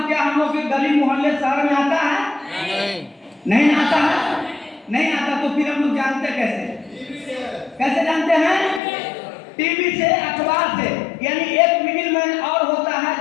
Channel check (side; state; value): right; drops out; at 8.8 s